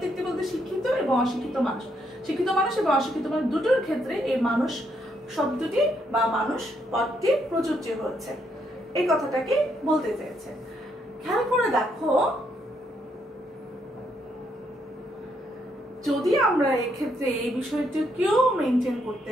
বলতে শিক্ষিত এবং অশিক্ষিত মানুষ, শিক্ষিত মানুষ এবং অশিক্ষিত মানুষ দুটোর ক্ষেত্রে এই মানুষ শব্দটি বা মানুষ পদটি প্রযোজ্য হচ্ছে, এই কথাটাকে বলতে চেয়েছে। খেয়াল করে দেখো যদি আমরা এক্ষেত্রে এই বিষয়টিকেও মেনটেন করতে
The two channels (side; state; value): both; normal; correlation 0.74